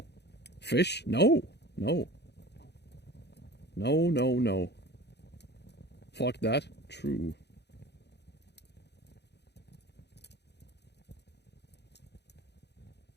Fish? No. No. No, no, no. Fuck that. True.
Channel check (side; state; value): right; late; 0.49 ms